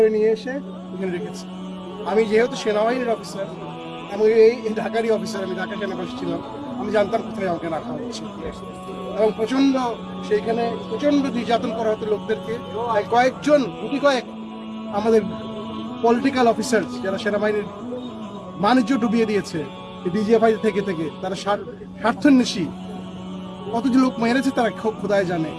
নিয়ে এসে এখানে রেখেছে। আমি যেহেতু সেনাবাহিনীর অফিসার এবং এই ঢাকারই অফিসার, আমি ঢাকা সেনাবাসী ছিলাম, আমি জানতাম কোথায় আমাকে রাখা হচ্ছে এবং সেইখানে প্রচন্ড নির্যাতন করা হতো লোকদেরকে। কয়েকজন আমাদের পলিটিক্যাল অফিসার যারা সেনাবাহিনীর বাণিজ্য ডুবিয়ে দিয়েছে ডিজিএফআই থেকে তারা স্বার্থান্বেষী কতজন লোক মেরেছে তারা খোদায় জানে।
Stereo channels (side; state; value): both; identical; correlation 1.00